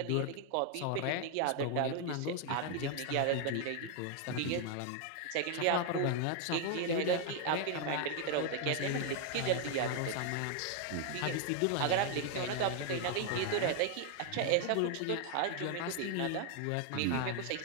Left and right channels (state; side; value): different; both; correlation 0.00